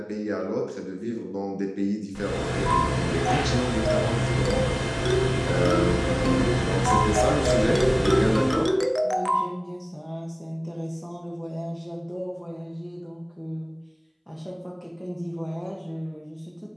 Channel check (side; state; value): both; identical; correlation 1.00